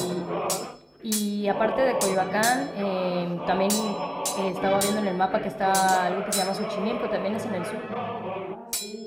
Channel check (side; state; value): both; identical; correlation 1.00